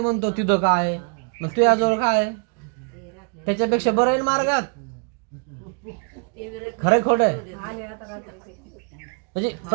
म्हणतो तिथं काय, मग तुझ्याजवळ काय, त्याच्यापेक्षा बरं आहे मार्गात. खरंय खोट आहे? म्हणजे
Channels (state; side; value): quieter; left; 38.2 dB